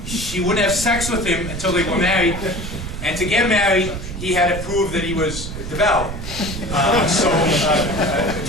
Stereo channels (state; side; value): noise; right; rumble, 7 dB below the sound